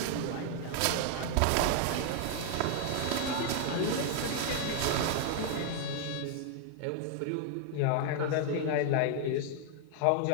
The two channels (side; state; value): both; different; correlation 0.00